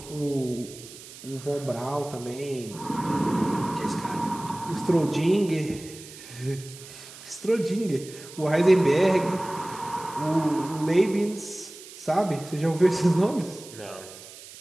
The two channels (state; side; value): noise; right; hiss, 17 dB below the sound